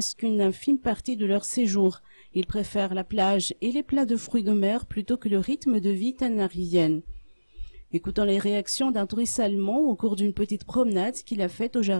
qu'une infime partie de leur séjour. Ils préfèrent la plage et les plats de fruits de mer plutôt que le rythme de vie tanarivienne. Écoutons les réactions d'un touriste allemand au cours d'une petite promenade qu'il a faite au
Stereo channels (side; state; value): both; inverted; correlation -1.00